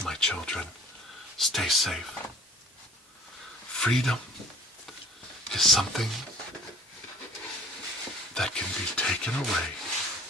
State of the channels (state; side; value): normal; both; correlation 0.48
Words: my children. Stay safe. Freedom is something that can be taken away